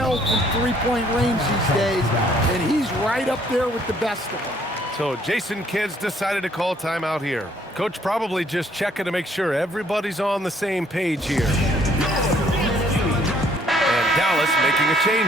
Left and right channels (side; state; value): both; normal; correlation 0.64